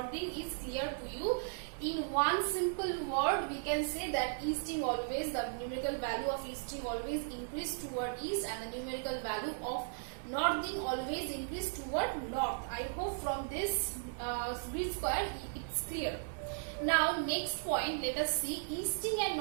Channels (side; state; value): left; silent; 54 dB below the other